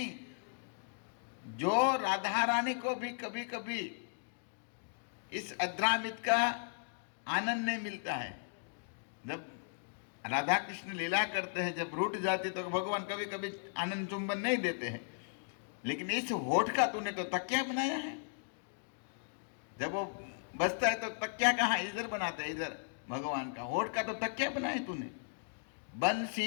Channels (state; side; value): silent; right; digital silence